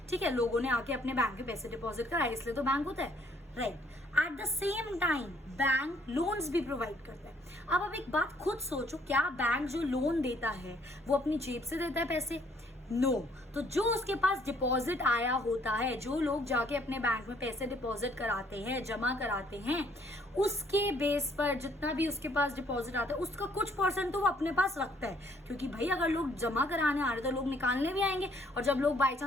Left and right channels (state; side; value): normal; both; correlation 0.64